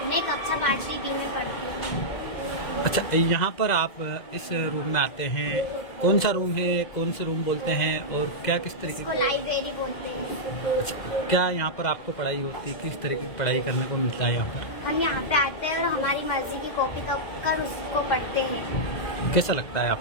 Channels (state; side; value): late; right; 2.0 ms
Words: मैं कक्षा 5वीं डी में पढ़ती हूँ। अच्छा, यहाँ पर आप इस रूम में आते हैं, कौन सा रूम है, कौन से रूम बोलते हैं और क्या किस तरीके इसको लाइब्रेरी बोलते हैं। अच्छा, क्या यहाँ पर आपको पढ़ाई होती है? किस तरीके की पढ़ाई करने को मिलता है यहाँ पर? हम यहाँ पे आते हैं और हमारी मर्जी की कॉपी कर उसको पढ़ते हैं। कैसा लगता है